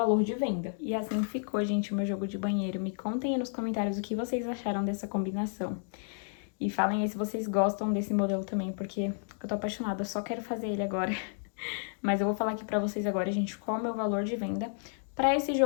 de venda. E assim ficou, gente, o meu jogo de banheiro. Me contem aí nos comentários o que vocês acharam dessa combinação. E falem aí se vocês gostam desse modelo também, porque eu tô apaixonada, eu só quero fazer ele agora. Mas eu vou falar aqui pra vocês agora, gente, qual é o meu valor de venda pra esse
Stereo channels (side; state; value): right; silent; digital silence